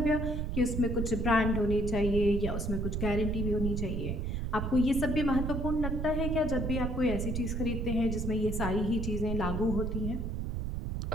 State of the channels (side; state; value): right; noise; rumble, 1 dB below the sound